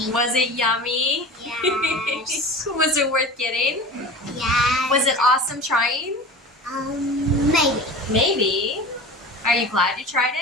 Was it yummy? Yes. Was it worth getting? Yes. Was it awesome trying? Maybe. Maybe. Are you glad you tried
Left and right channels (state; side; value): normal; both; correlation 0.35